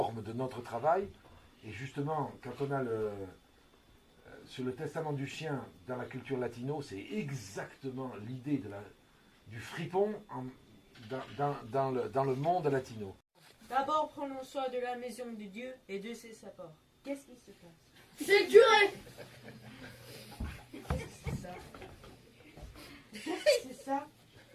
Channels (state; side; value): identical; both; correlation 1.00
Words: de notre travail, et justement quand on a sur le testament du chien dans la culture latino, c'est exactement l'idée du fripon dans le monde latino. D'abord, prenons soin de la maison de Dieu et de ses sapeurs. Qu'est-ce qui se passe? C'est le curé. C'est ça. C'est ça.